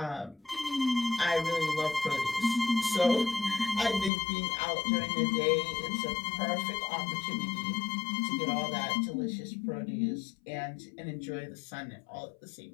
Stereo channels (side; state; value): right; drops out; at 4.1 s